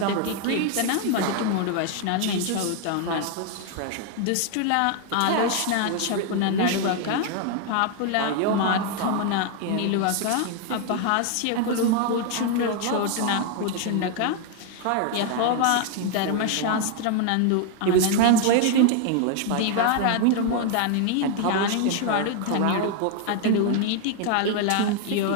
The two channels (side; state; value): both; different; correlation 0.00